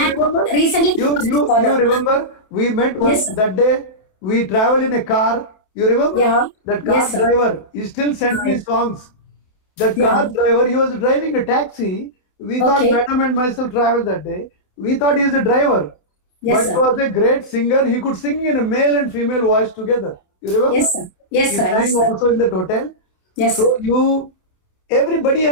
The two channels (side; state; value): right; late; 28 ms